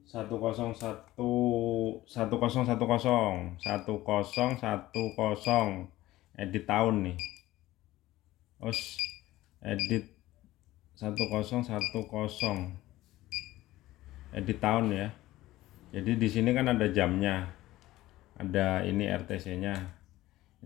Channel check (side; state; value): right; quieter; 16.5 dB